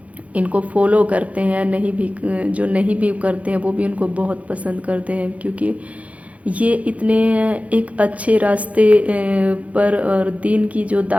ان کو فالو کرتے ہیں، جو نہیں بھی کرتے ہیں وہ بھی ان کو بہت پسند کرتے ہیں، کیونکہ یہ اتنے ایک اچھے راستے پر اور دین کی جو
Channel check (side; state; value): left; late; 0.066 ms